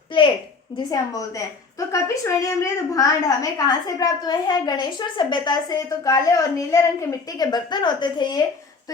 प्लेट जिसे हम बोलते हैं। तो कपिशवरणी मृद भांड हमें कहाँ से प्राप्त हुए हैं? गणेश्वर सभ्यता से। तो काले और नीले रंग के मिट्टी के बर्तन होते थे ये, तो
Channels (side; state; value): right; quieter; 4.4 dB